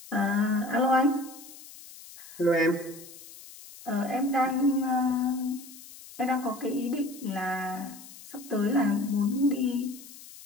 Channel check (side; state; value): left; noise; hiss, 18 dB below the sound